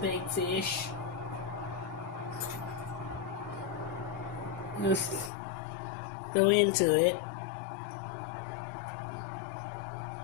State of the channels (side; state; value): right; drops out; at 5.3 s